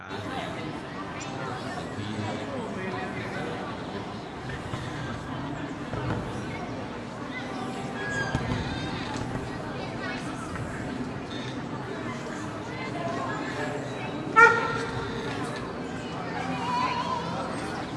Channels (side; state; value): both; identical; correlation 1.00